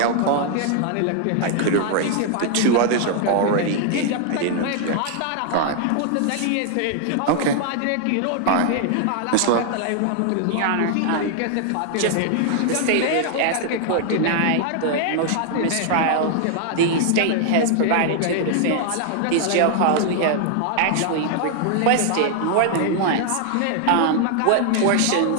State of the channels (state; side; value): different; both; correlation 0.00